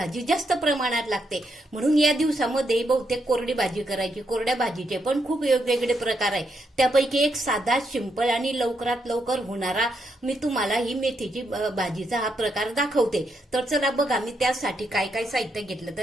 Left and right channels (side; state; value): both; normal; correlation 0.80